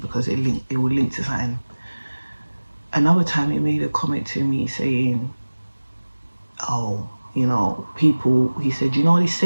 because it will link to something. Another time he made a comment to me saying, oh, you know, people, he said, you know, he's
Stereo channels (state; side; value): inverted; both; correlation -1.00